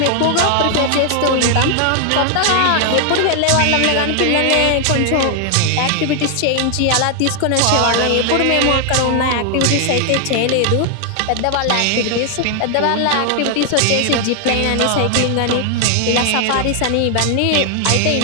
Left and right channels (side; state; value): both; different; correlation 0.00